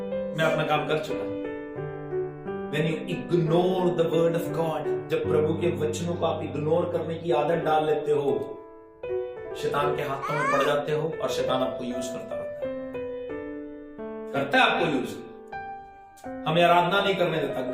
मैं अपना काम कर चुका। When you ignore the word of God, जब प्रभु के वचनों को आप इग्नोर करने की आदत डाल लेते हो, शैतान के हाथों में पड़ जाते हो और शैतान आपको यूज करता रहता है, करता है आपको यूज। हमें आराधना नहीं करने देता,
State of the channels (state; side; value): identical; both; correlation 1.00